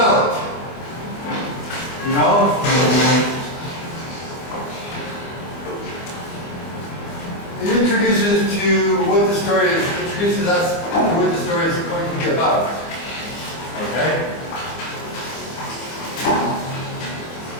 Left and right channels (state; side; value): late; right; 25 ms